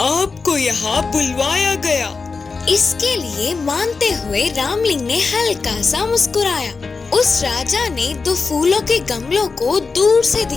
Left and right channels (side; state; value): right; quieter; 4.5 dB